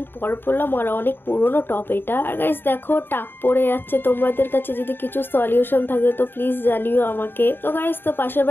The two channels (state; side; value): late; right; 0.099 ms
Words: পর পরলাম আর অনেক পুরনো টপ এটা। আর গাইস দেখো, টাক পড়ে যাচ্ছে। তোমাদের কাছে যদি কিছু সলিউশন থাকে তো প্লিজ জানিও আমাকে। তো গাইস, তো পাশের